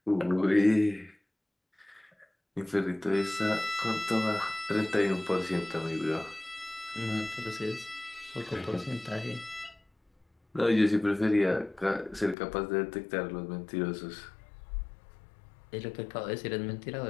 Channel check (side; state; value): right; drops out; at 12.4 s